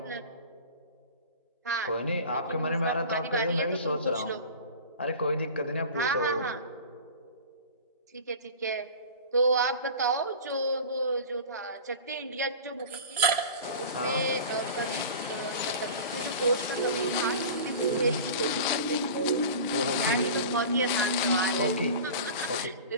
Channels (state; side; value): inverted; both; correlation -0.36